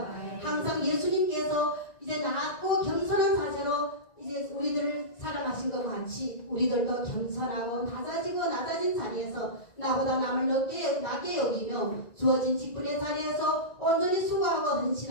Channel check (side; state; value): right; late; 1.9 ms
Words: 항상 예수님께서 이제 낮고 겸손한 자세로 이제 우리들을 사랑하신 것 같이 우리들도 겸손하고 낮아진 자리에서 나보다 남을 낮게 여기며 주어진 직분의 자리에서 온전히 수고하고